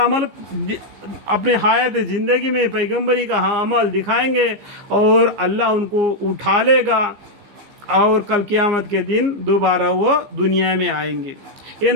अपने हयात ज़िंदगी में पैगंबरी का अमल दिखाएंगे और अल्लाह उनको उठा लेगा और कल क़यामत के दिन दोबारा वो दुनिया में आएंगे। ये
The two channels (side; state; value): left; late; 15 ms